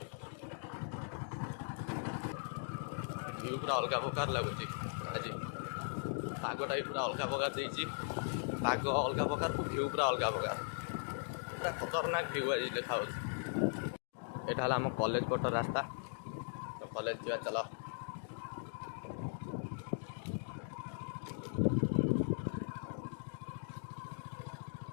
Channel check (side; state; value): right; silent; digital silence